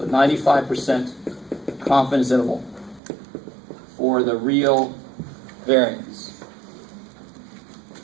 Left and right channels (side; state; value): left; drops out; at 3.0 s